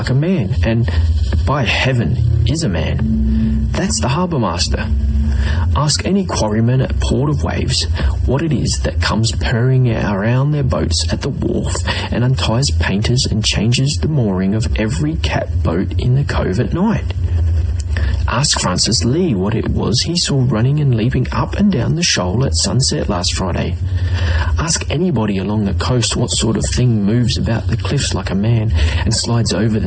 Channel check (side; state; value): both; identical; correlation 1.00